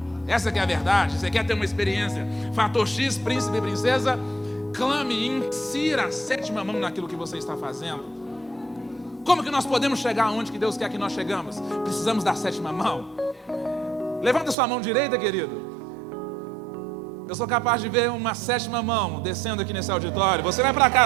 Essa que é a verdade. Você quer ter uma experiência fator X, príncipe e princesa? Clame e insira a 7ª mão naquilo que você está fazendo. Como que nós podemos chegar aonde que Deus quer que nós chegamos? Precisamos da 7ª mão. Levanta sua mão direita, querido. Eu sou capaz de ver uma 7ª mão descendo aqui nesse auditório. Você vai para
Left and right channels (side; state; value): left; drops out; at 14.6 s